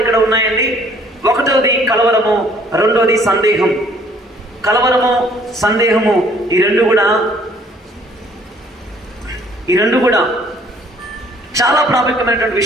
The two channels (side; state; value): both; normal; correlation 0.59